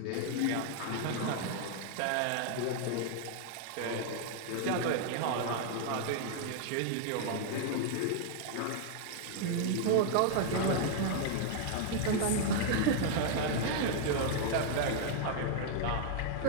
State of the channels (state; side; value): different; both; correlation -0.01